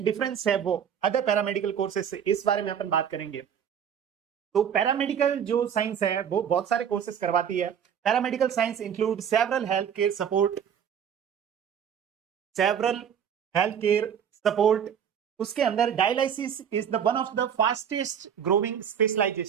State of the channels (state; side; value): quieter; left; 8.3 dB